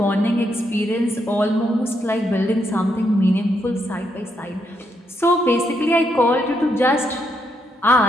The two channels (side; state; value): both; normal; correlation 0.78